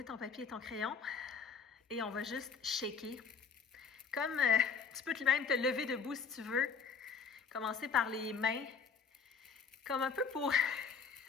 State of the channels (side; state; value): right; quieter; 5.7 dB